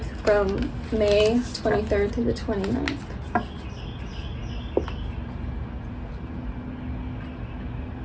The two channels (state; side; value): identical; both; correlation 1.00